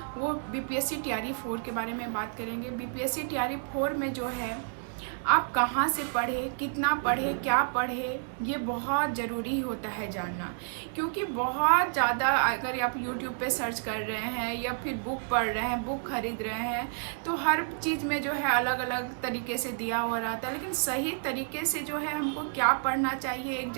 वो बीपीएससी टीआरई 4 के बारे में बात करेंगे। बीपीएससी टीआरई 4 में जो है आप कहाँ से पढ़े, कितना पढ़े, क्या पढ़े, ये बहुत ज़रूरी होता है जानना। क्योंकि बहुत ज़्यादा अगर आप यूट्यूब पे सर्च कर रहे हैं या फिर बुक पढ़ रहे हैं, बुक खरीद रहे हैं, तो हर चीज़ में जो है अलग अलग तरीके से दिया हुआ रहता है। लेकिन सही तरीके से जो है हमको क्या पढ़ना चाहिए,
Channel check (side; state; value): left; silent; digital silence